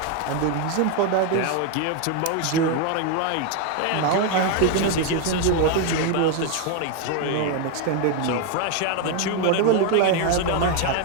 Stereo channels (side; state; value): both; different; correlation 0.01